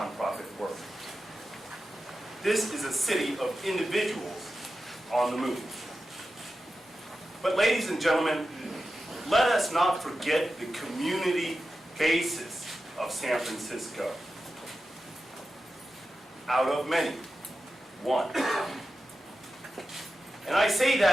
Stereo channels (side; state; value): both; normal; correlation 0.92